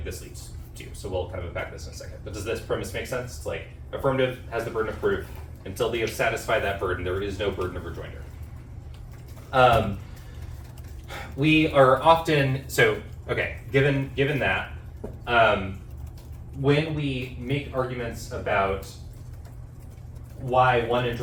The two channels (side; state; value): both; identical; correlation 1.00